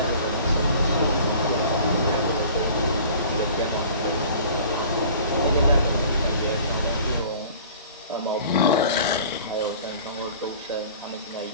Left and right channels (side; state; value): both; inverted; correlation -0.47